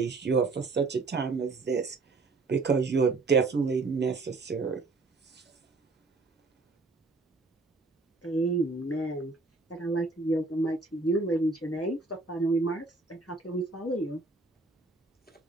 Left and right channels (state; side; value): quieter; left; 3.6 dB